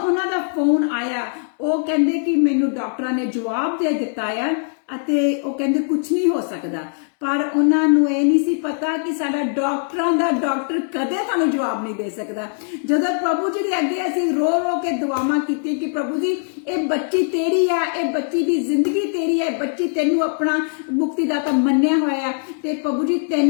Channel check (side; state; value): right; silent; digital silence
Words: ਦਾ ਫੋਨ ਆਇਆ ਉਹ ਕਹਿੰਦੇ ਕਿ ਮੈਨੂੰ ਡਾਕਟਰਾਂ ਨੇ ਜਵਾਬ ਦੇ ਦਿੱਤਾ ਆ ਅਤੇ ਉਹ ਕਹਿੰਦੇ ਕੁਝ ਨਹੀਂ ਹੋ ਸਕਦਾ। ਪਰ ਉਹਨਾਂ ਨੂੰ ਇਹ ਨਹੀਂ ਸੀ ਪਤਾ ਕਿ ਸਾਡਾ ਡਾਕਟਰਾਂ ਦਾ ਡਾਕਟਰ ਕਦੇ ਤੁਹਾਨੂੰ ਜਵਾਬ ਨਹੀਂ ਦੇ ਸਕਦਾ। ਜਦੋਂ ਪ੍ਰਭੂ ਜੀ ਦੇ ਅੱਗੇ ਅਸੀਂ ਰੋ ਕੇ ਦੁਆਵਾਂ ਕੀਤੀਆਂ ਕਿ ਪ੍ਰਭੂ ਜੀ ਇਹ ਬੱਚੀ ਤੇਰੀ ਆ, ਇਹ ਬੱਚੀ ਦੀ ਜ਼ਿੰਦਗੀ ਤੇਰੀ ਹੈ, ਬੱਚੀ ਤੈਨੂੰ ਆਪਣਾ ਮੁਕਤੀਦਾਤਾ ਮੰਨਿਆ ਹੋਇਆ ਤੇ ਪ੍ਰਭੂ ਜੀ